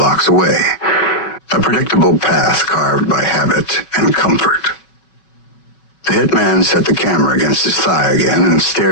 away. A predictable path carved by habit and comfort. The hitman set the camera against his thigh again and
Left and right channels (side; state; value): right; late; 5.3 ms